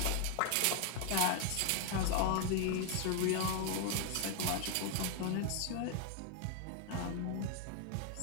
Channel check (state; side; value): different; both; correlation 0.00